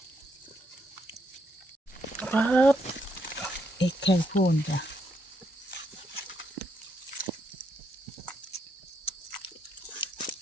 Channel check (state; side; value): normal; both; correlation 0.77